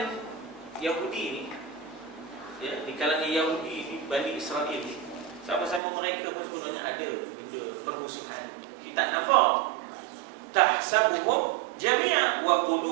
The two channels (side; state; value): left; drops out; at 5.8 s